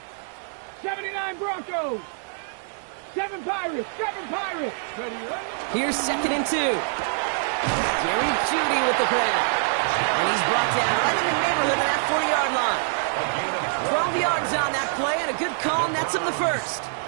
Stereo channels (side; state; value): left; silent; digital silence